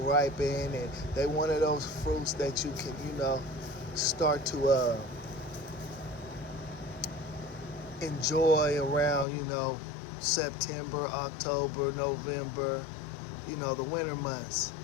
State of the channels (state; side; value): drops out; right; at 9.2 s